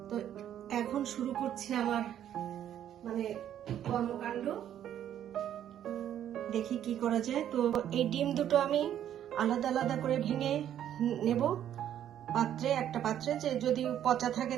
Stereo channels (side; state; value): left; quieter; 10.6 dB